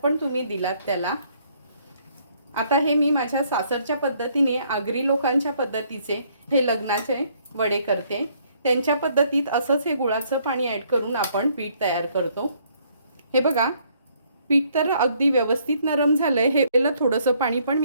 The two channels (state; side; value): inverted; both; correlation -0.66